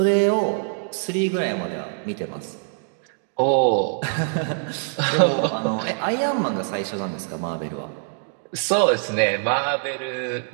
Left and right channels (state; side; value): silent; left; digital silence